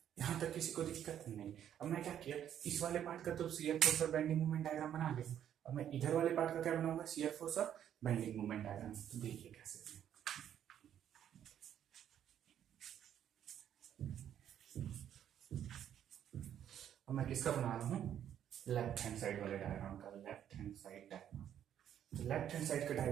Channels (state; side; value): quieter; left; 10.0 dB